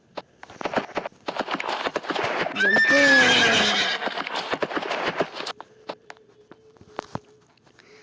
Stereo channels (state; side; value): identical; both; correlation 1.00